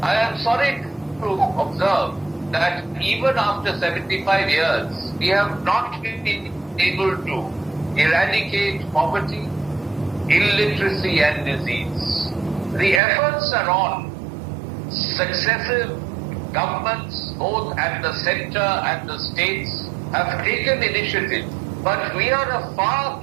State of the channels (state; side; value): drops out; left; at 13.0 s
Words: I am sorry to observe that even after 75 years, we have not been able to eradicate poverty, illiteracy and disease. The efforts are on. Successive governments, both at the center and the states, have taken initiative. But we are a far